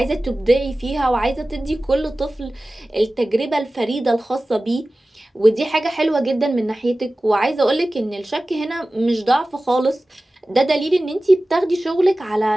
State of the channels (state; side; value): normal; both; correlation 0.96